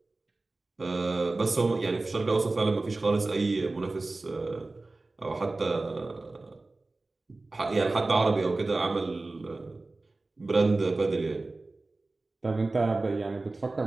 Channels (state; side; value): quieter; left; 3.2 dB